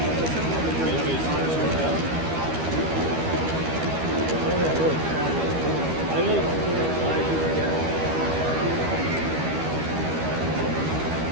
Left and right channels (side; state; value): left; late; 13 ms